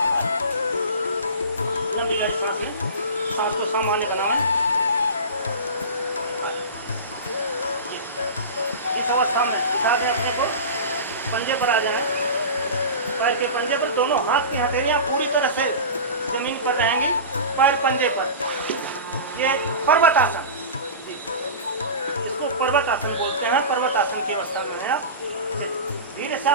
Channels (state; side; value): inverted; both; correlation -0.30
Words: सांस को सामान्य बनाएं। इस अवस्था में दिखा दें अपने को, पंजे पर आ जाएं, पैर के पंजे पर, दोनों हाथ की हथेलियां पूरी तरह से जमीन पर रहेंगी, पैर पंजे पर। ये पर्वत आसन, इसको पर्वत आसन बोलते हैं। पर्वत आसन की अवस्था में है आप। धीरे से